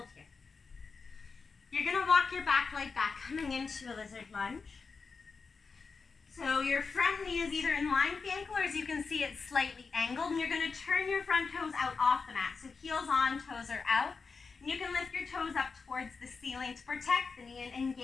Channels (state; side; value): quieter; right; 4.8 dB